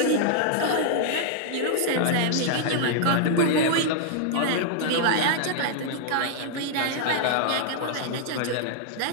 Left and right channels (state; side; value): different; both; correlation -0.01